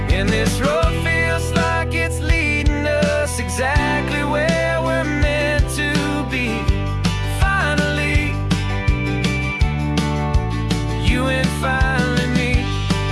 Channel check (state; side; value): identical; both; correlation 1.00